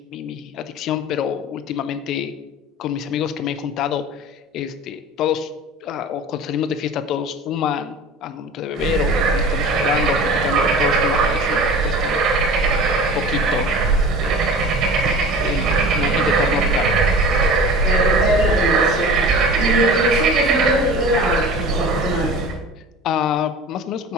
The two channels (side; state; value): both; normal; correlation 0.38